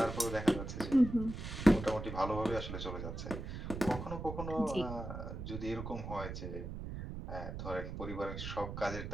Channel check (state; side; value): noise; right; rumble, 7 dB below the sound